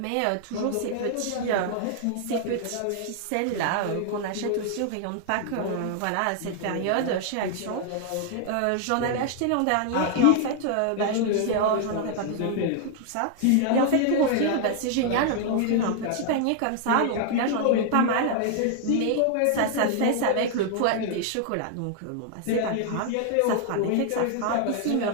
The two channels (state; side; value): different; both; correlation 0.00